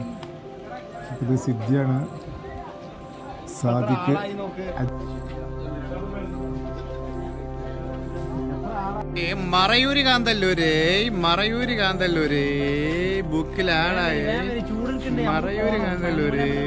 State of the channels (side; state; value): both; identical; correlation 1.00